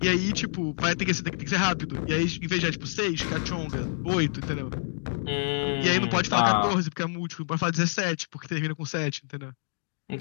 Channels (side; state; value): right; silent; digital silence